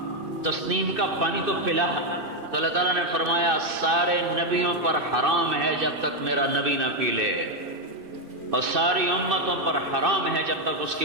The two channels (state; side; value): late; left; 2.6 ms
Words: تسنیم کا پانی تو پلا۔ تو اللہ تعالیٰ نے فرمایا سارے نبیوں پر حرام ہے جب تک میرا نبی نہ پی لے، اور ساری امتوں پر حرام ہے جب تک اس کی